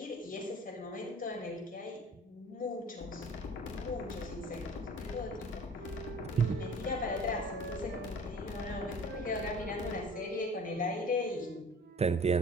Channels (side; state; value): both; normal; correlation 0.45